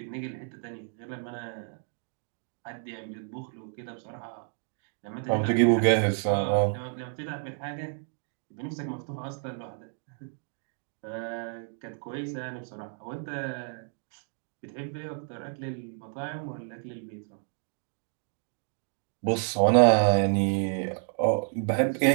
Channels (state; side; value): silent; left; 56 dB below the other